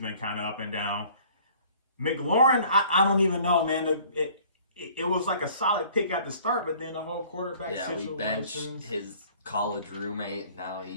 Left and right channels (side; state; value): both; inverted; correlation -0.53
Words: kind of up and down. McLaurin, I don't even know, man. It was like a solid pick at the start, but then the whole quarterback situation. We benched his college roommate. Now